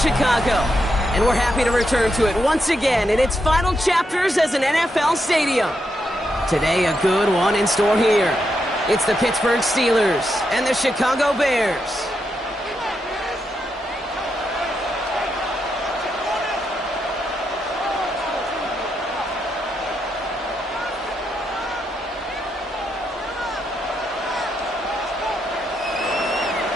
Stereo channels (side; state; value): both; normal; correlation 0.83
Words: And we're happy to return to it once again in its final chapters as an NFL stadium. Today, a good one in store here. It's the Pittsburgh Steelers and the Chicago Bears.